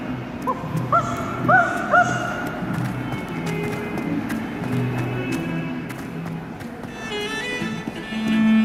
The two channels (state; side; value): identical; both; correlation 1.00